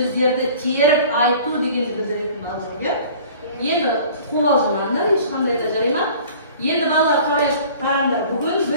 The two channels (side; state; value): both; inverted; correlation -0.47